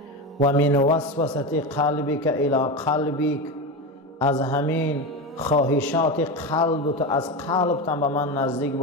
و من وسوسه قلبک الی قلبک، از همین خواهشات قلبت، از قلبت به من نزدیک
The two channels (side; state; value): both; normal; correlation 0.19